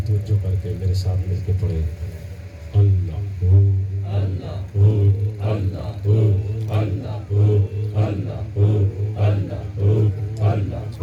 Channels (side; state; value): both; identical; correlation 1.00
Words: توجہ کر کے میرے ساتھ مل کے پڑھے اللہ ہو اللہ ہو اللہ ہو اللہ ہو اللہ ہو اللہ ہو اللہ